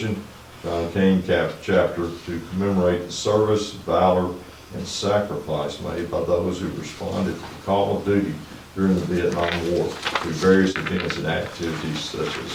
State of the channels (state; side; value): identical; both; correlation 1.00